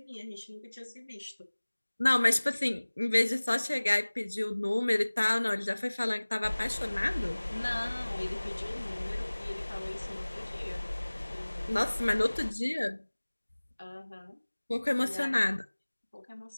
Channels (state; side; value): inverted; both; correlation -1.00